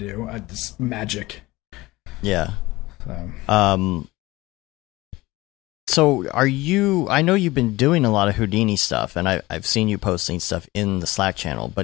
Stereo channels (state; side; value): quieter; right; 19.9 dB